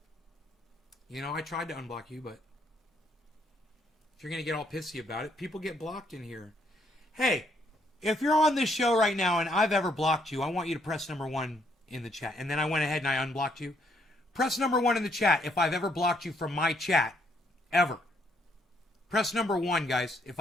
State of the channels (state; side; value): normal; both; correlation 0.71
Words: You know, I tried to unblock you, but if you're going to get all pissy about it, people get blocked in here. Hey, if you're on this show right now and I've ever blocked you, I want you to press number 1 in the chat. And then I went ahead and I unblocked you. Press number 1 in the chat if I've ever blocked you from my chat. Ever. Press number 1, guys, if